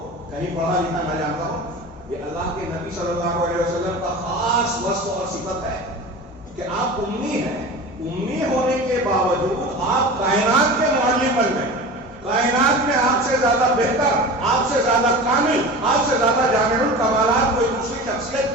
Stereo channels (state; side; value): normal; both; correlation 0.33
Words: کہیں پڑھا لکھا نہ جانتا ہو۔ یہ اللہ کے نبی صلی اللہ علیہ وسلم کا خاص وصف اور صفت ہے کہ آپ امی ہیں۔ امی ہونے کے باوجود آپ کائنات کے معلم بن گئے۔ کائنات میں آپ سے زیادہ بہتر، آپ سے زیادہ کامل، آپ سے زیادہ جامع الکمالات کوئی دوسری